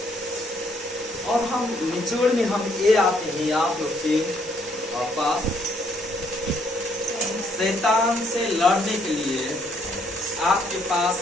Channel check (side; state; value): both; normal; correlation 0.69